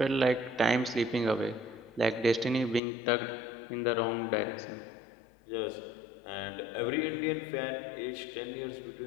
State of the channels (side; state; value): right; drops out; at 2.8 s